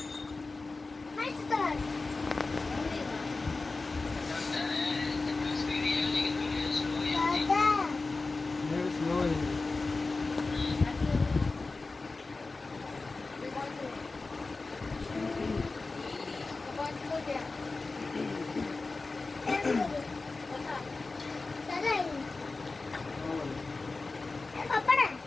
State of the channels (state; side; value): quieter; right; 3.7 dB